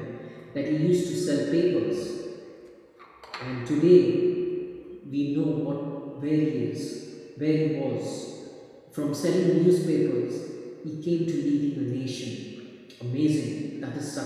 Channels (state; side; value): identical; both; correlation 1.00